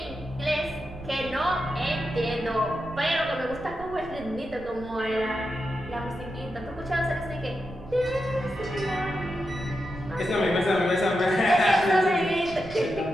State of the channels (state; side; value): noise; right; rumble, 16 dB below the sound